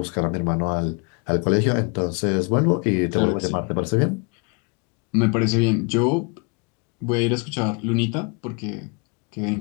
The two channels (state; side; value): quieter; right; 33.6 dB